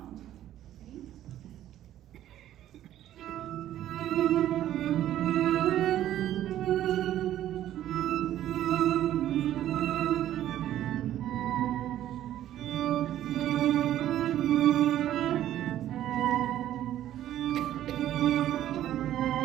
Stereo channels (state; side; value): quieter; left; 12.4 dB